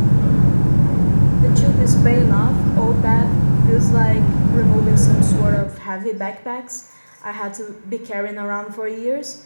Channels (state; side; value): inverted; both; correlation -1.00